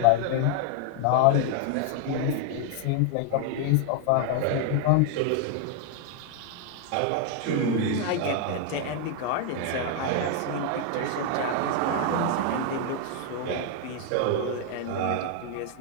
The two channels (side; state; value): both; different; correlation 0.00